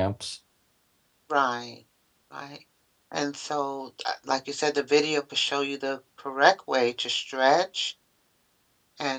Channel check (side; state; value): both; identical; correlation 1.00